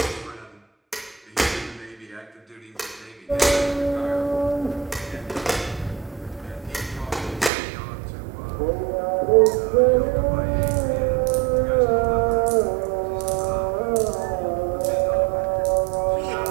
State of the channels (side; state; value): left; drops out; at 7.5 s